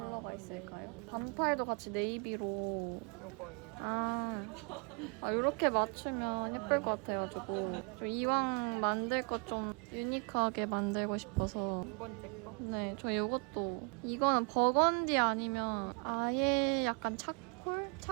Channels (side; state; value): left; quieter; 34.5 dB